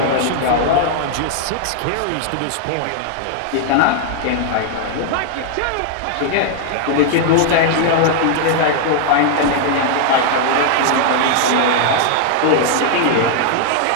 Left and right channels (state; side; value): different; both; correlation 0.00